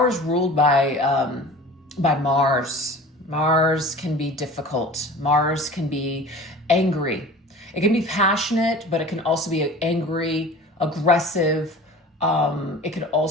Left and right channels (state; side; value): normal; both; correlation 0.40